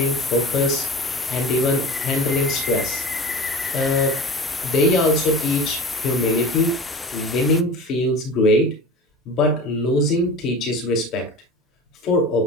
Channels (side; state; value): both; normal; correlation 0.35